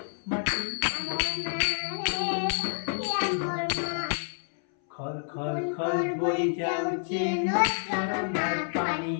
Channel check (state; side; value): silent; right; 59 dB below the other